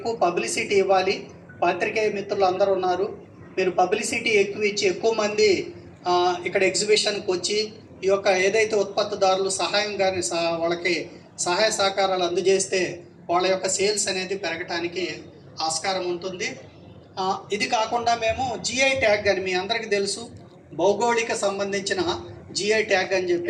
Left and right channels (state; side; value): identical; both; correlation 1.00